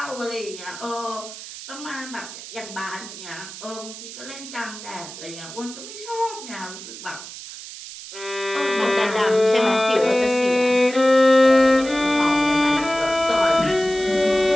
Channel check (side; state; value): right; noise; hiss, 13 dB below the sound